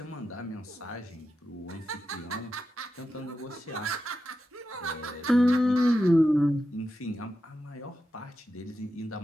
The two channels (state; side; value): normal; both; correlation 0.89